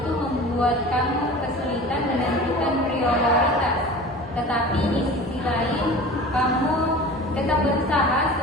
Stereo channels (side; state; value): both; normal; correlation 0.38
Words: membuat kamu kesulitan menentukan prioritas. Tetapi di sisi lain, kamu tetap berusaha